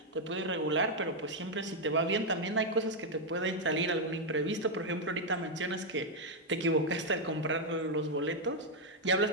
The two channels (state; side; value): normal; both; correlation 0.01